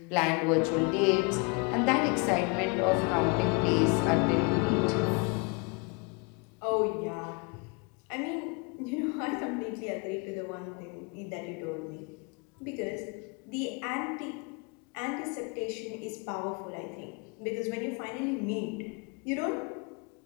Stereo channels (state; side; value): quieter; right; 30.7 dB